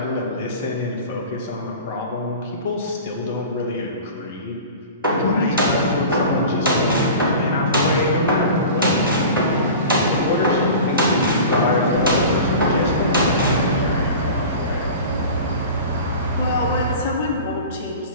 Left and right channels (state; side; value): inverted; both; correlation -0.37